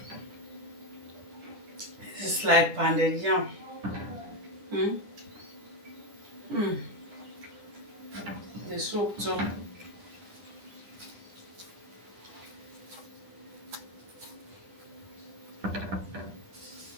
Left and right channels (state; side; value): late; left; 9.9 ms